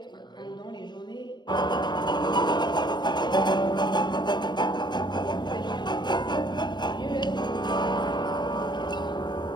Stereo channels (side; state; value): right; late; 0.21 ms